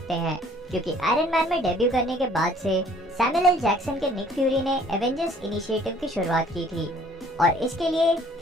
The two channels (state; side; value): normal; both; correlation 0.57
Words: हैं क्योंकि आयरन मैन में डेब्यू करने के बाद से सैमुअल एल जैक्सन के निक फ्यूरी ने एवेंजर्स इनिशिएटिव की शुरुआत की थी और इसके लिए